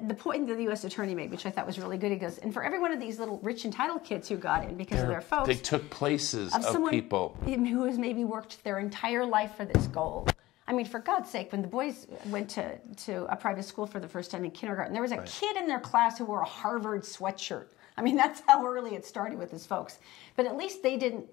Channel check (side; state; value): right; quieter; 17.8 dB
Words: the point that the U.S. Attorney made, which I thought was really good. He goes, and for every one of these little rich entitled kids who got in because of their folks, they took places of someone people who has maybe worked their entire life for this goal. I mean, for God's sake, when the boys went to a private school for the first time in kindergarten, there was a kid in their class who wore a Harvard sweatshirt. I mean, that's how early it started with his folks. But at least they didn't